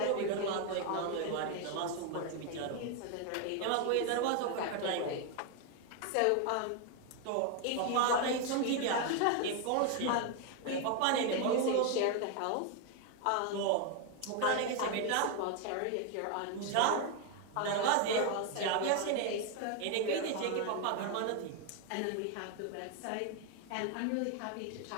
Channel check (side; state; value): both; different; correlation 0.01